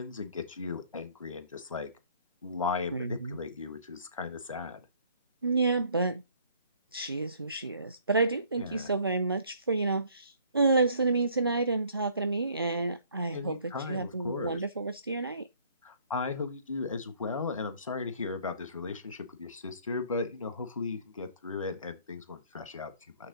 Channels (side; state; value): both; inverted; correlation -0.59